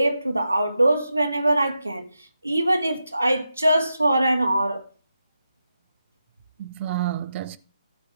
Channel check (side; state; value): both; inverted; correlation -0.87